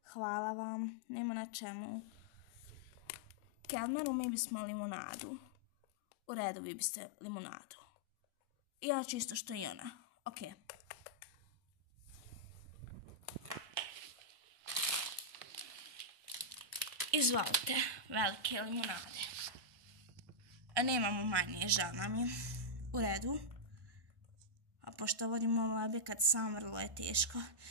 Hvala vam. Nema na čemu. Kelmeru, mi bismo limonadu. U redu, vi biste limonadu. I ja čisto što i ona. Ok. Izvolite, velike limonade. Nemamo manje, žal nam je. U redu. A pošto vodimo ovo objekat sam, vrlo je teško.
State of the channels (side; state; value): left; late; 1.1 ms